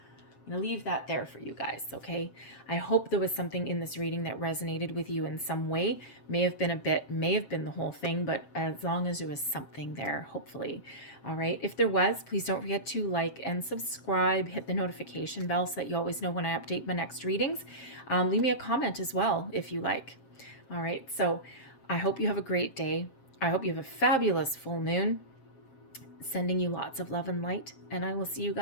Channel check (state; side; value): late; right; 7.5 ms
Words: I'm going to leave that there for you guys, okay? I hope there was something in this reading that resonated with you in some way. May have been the whole thing, but as long as there was something there, hopefully. All right. If there was, please don't forget to like and subscribe, hit the notification bell so that you always know when I update my next readings. Leave me a comment as well if you like. All right. So I hope you have a great day. I hope you have a fabulous full moon. Sending you lots of love and light, and I will see you